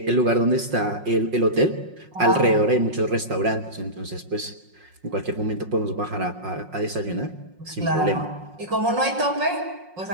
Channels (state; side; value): late; left; 5.5 ms